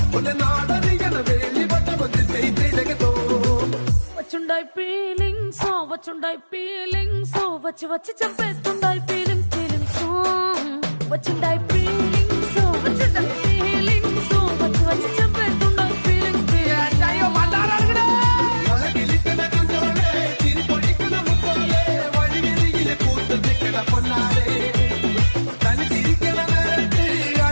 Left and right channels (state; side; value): inverted; both; correlation -1.00